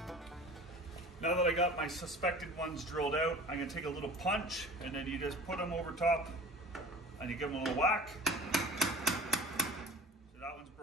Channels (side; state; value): both; normal; correlation 0.38